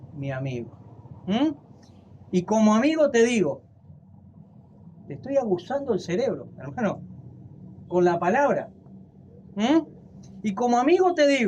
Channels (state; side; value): identical; both; correlation 1.00